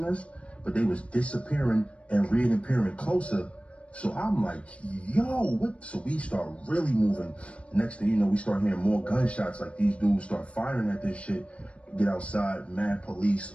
us, but they was disappearing and reappearing closer. So I'm like, yo, what? So we start really moving. Next thing you know, we start hearing more gunshots. Like, these dudes start firing at this shit. Get outside, mad police,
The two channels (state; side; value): late; right; 0.061 ms